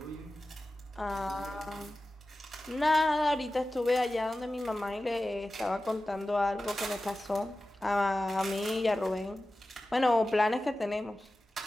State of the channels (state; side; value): normal; both; correlation 0.95